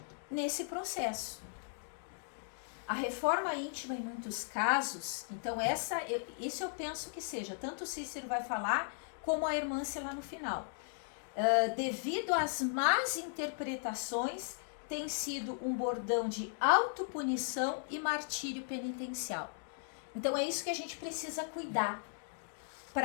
nesse processo. A reforma íntima, em muitos casos, então isso eu penso que seja, tanto o Cícero vai falar, como a Hermância lá no final. Devido às más interpretações, tem sido um bordão de autopunição e martírio penitencial. Então é isso que a gente precisa cuidar,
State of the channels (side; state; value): right; silent; digital silence